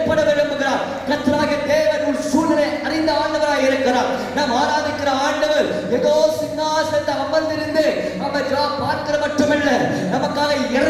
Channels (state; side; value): identical; both; correlation 1.00